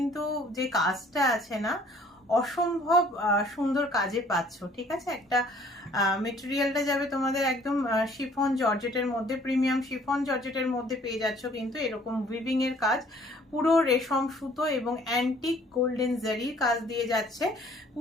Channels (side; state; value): both; normal; correlation 0.57